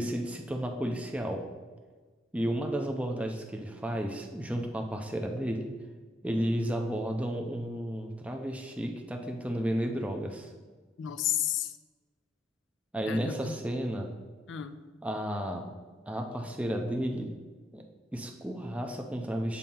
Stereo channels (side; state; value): both; normal; correlation 0.80